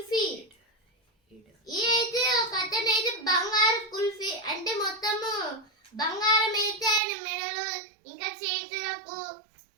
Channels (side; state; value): left; drops out; at 7.0 s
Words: ఇదైతే ఒక అతను అయితే బంగారు కుల్ఫీ అంటే మొత్తము బంగారం అయితే ఆయన మెడలు ఇంకా చేతులకు